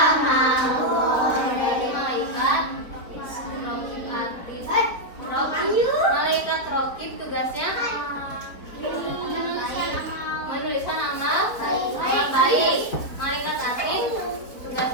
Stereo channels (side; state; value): right; late; 4.5 ms